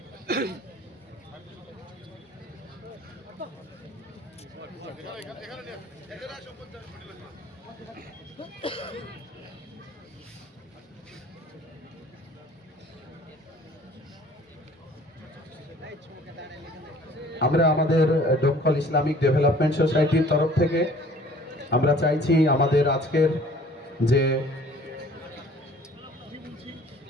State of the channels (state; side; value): normal; both; correlation 0.52